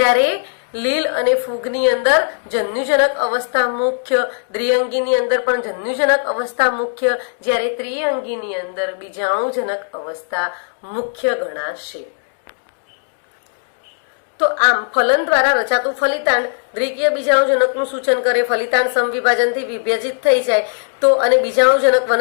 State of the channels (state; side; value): silent; right; digital silence